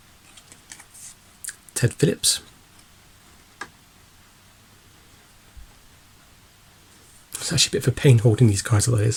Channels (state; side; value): identical; both; correlation 1.00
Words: Ted Phillips. It's actually a bit of a pain holding these cards, although it